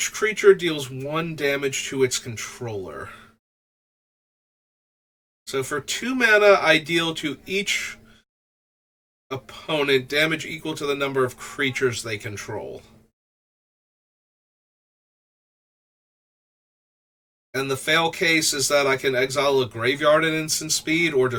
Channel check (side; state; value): both; identical; correlation 1.00